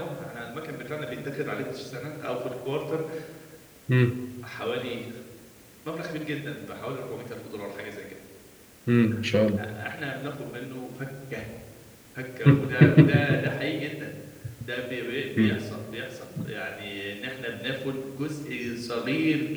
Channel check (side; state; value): both; identical; correlation 1.00